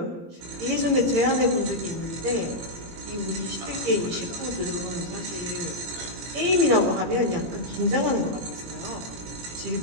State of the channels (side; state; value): left; late; 18 ms